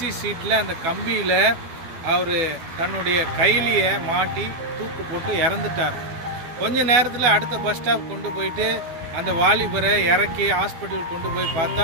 சீட்டில் அந்த கம்பியில் அவர் தன்னுடைய கைலியை மாட்டி தூக்கு போட்டு இறந்துட்டார். கொஞ்ச நேரத்தில் அடுத்த பஸ் ஸ்டாப் கொண்டு போயிட்டு அந்த வாலிபரை இறக்கி ஹாஸ்பிட்டல் கொண்டு போய்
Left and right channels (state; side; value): late; left; 12 ms